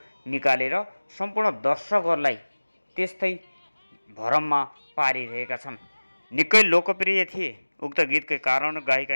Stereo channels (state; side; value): inverted; both; correlation -1.00